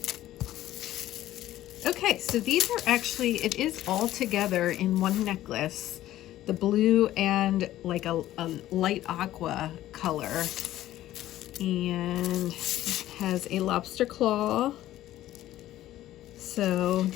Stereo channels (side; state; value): right; quieter; 14.1 dB